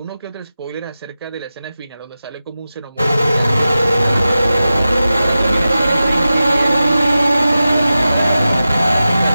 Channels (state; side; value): inverted; both; correlation -0.94